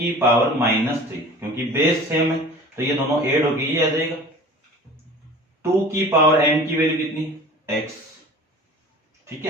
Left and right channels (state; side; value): normal; both; correlation 0.41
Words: पावर -3, क्योंकि बेस सेम है तो ये दोनों ऐड होके ये आ जाएगा। 2 की पावर m की वैल्यू कितनी, x। ठीक